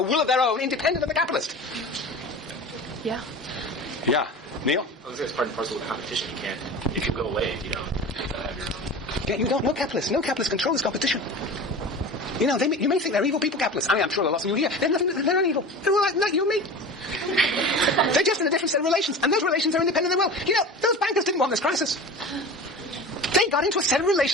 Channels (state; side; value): normal; both; correlation 0.34